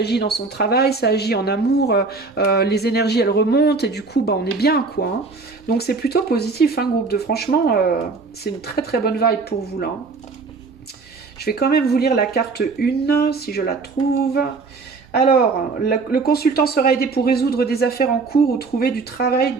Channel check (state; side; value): quieter; left; 4.2 dB